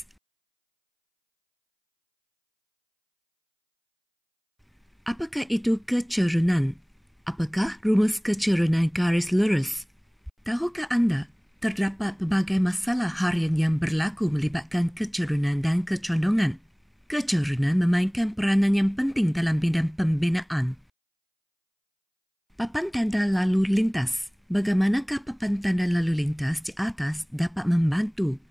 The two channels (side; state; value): both; identical; correlation 1.00